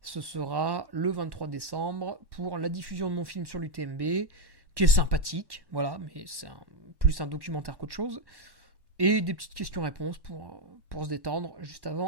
ce sera le 23 décembre pour la diffusion de mon film sur l'UTMB, qui est sympathique, mais c'est plus un documentaire qu'autre chose. Et des petites questions-réponses pour se détendre juste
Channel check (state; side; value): late; left; 1.1 ms